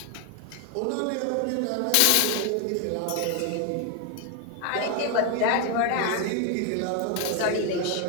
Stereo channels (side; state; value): both; different; correlation 0.00